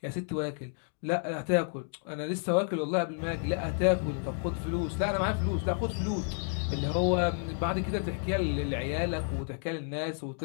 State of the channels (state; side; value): silent; right; 57 dB below the other